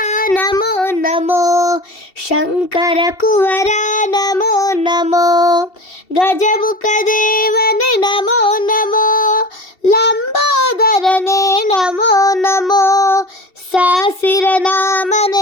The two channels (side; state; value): right; late; 2.7 ms